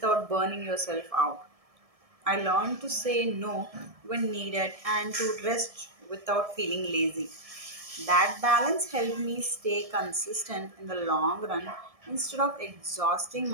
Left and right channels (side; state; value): left; late; 1.7 ms